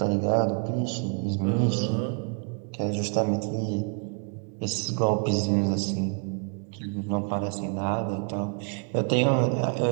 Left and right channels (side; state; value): left; quieter; 39.9 dB